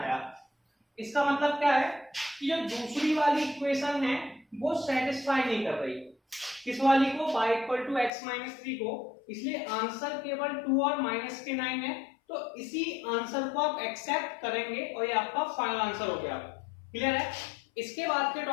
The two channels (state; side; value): drops out; right; at 8.1 s